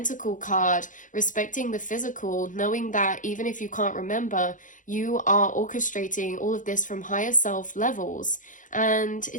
card, respecting the physical, knowing that even if you can't remember, you are orchestrating all of this from higher self levels. And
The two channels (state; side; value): late; right; 0.38 ms